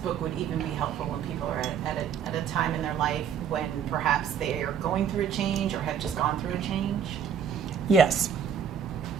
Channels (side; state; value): left; quieter; 7.9 dB